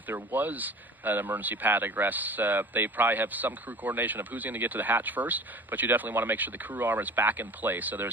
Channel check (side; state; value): both; normal; correlation 0.41